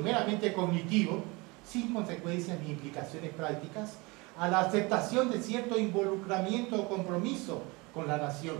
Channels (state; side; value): quieter; left; 25.5 dB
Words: meramente cognitivo, sin consecuencias ni implicaciones prácticas, a la aceptación de cierto involucramiento o compromiso con la nación,